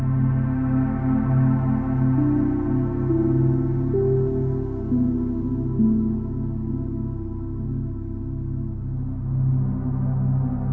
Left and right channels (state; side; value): identical; both; correlation 1.00